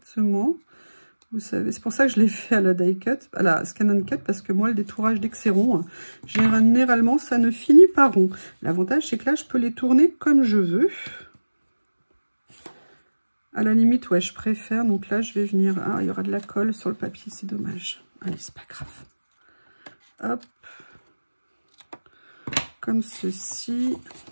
Vous savez, c'est pour ça que je l'ai fait à la die cut, à la Scan & Cut, parce que moi, le détourage dès que c'est rond, généralement, ça ne finit pas rond. L'avantage, c'est que là, je peux les tourner comme je veux. À la limite, ouais, je préfère. Donc là, je vais venir... Ah, il y aura de la colle sur le papier, c'est dommage. Allez, c'est pas grave. Hop. Comme ceci.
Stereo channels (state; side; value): inverted; both; correlation -1.00